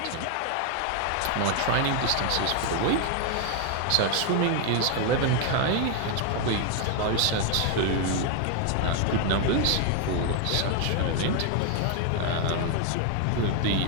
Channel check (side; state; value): both; different; correlation 0.01